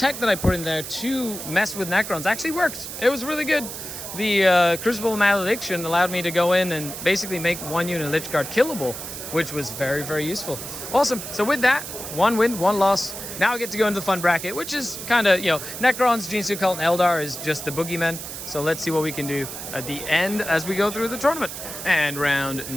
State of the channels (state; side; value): noise; right; hiss, 9 dB below the sound